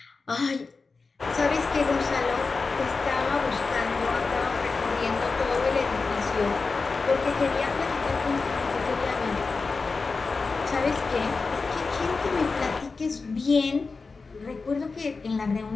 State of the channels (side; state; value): right; quieter; 4.3 dB